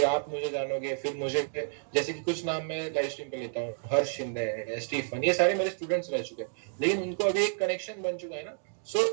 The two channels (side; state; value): left; silent; digital silence